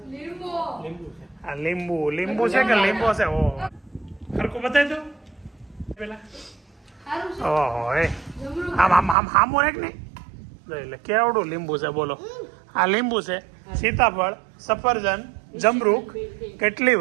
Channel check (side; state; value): left; drops out; at 9.2 s